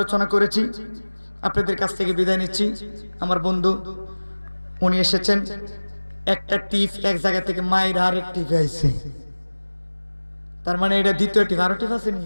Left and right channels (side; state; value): both; inverted; correlation -1.00